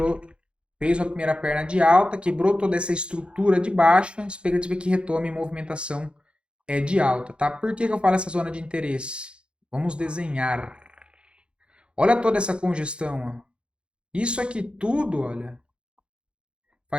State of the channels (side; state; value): left; late; 0.056 ms